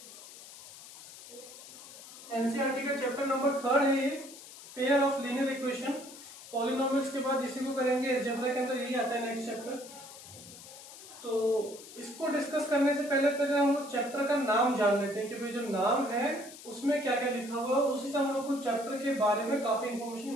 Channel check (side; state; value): left; noise; hiss, 16 dB below the sound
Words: एनसीईआरटी का चैप्टर नंबर 3 है ये, pair of linear equation. Polynomials के बाद इसी को करेंगे, अलजेब्रा के अंदर यही आता है नेक्स्ट चैप्टर। तो इसको डिस्कस करने से पहले हम लोग चैप्टर का नाम जान लेते हैं कि भाई जो नाम है उसमें क्या क्या लिखा हुआ है, उसी से हम लोग को चैप्टर के बारे में काफी इंफॉर्मेशन